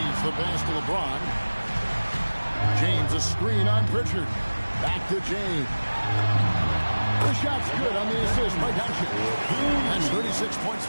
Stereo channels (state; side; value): inverted; both; correlation -1.00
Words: the pass to LeBron. James a screen on Pritchard. Back to James. The shot's good on the assist by Doncic. That's 36 points